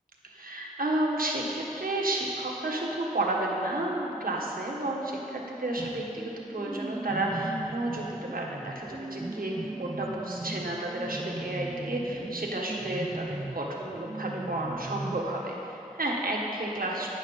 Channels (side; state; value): both; normal; correlation 0.49